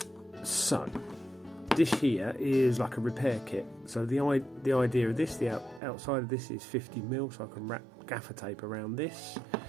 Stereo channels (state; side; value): drops out; left; at 5.8 s